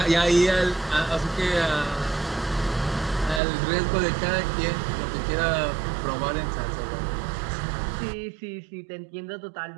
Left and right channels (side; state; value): left; drops out; at 3.4 s